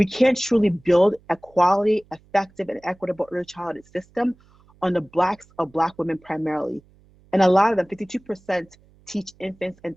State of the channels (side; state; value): right; noise; hum, 30 dB below the sound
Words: can't truly build a quality, effective, and equitable early childhood system on the backs of Black women primarily. And a lot of them, 52%, teach infants and